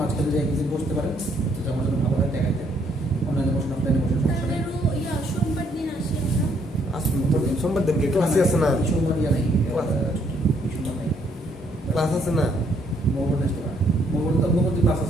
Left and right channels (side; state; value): both; normal; correlation 0.69